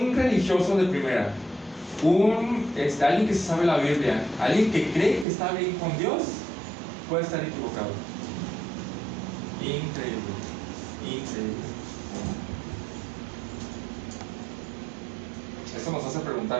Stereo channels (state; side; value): drops out; left; at 5.2 s